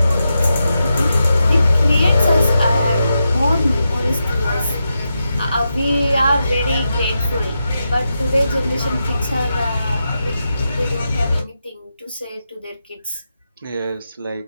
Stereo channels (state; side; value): inverted; both; correlation -0.87